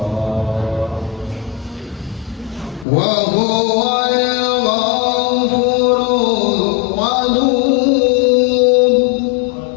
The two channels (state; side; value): drops out; right; at 2.9 s